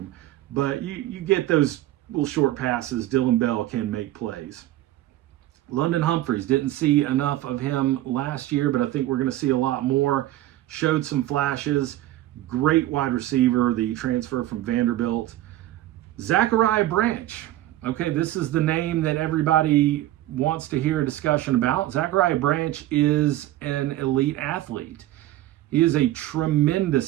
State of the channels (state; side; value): quieter; left; 14.9 dB